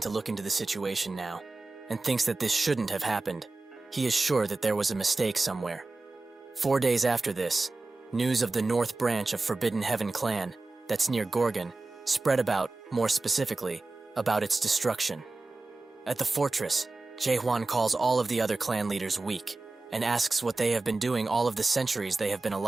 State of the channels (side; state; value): left; quieter; 3.4 dB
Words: to look into the situation now, and thinks that this shouldn't have happened. He is sure that there was a mistake somewhere. 4 days after this, news of the North Branch of Forbidden Heaven clan, that's near Gorgon, spread about, more specifically, about its destruction. At the fortress, Jae-hwan calls all of the other clan leaders weak, and asks what they have been doing all of the centuries they have been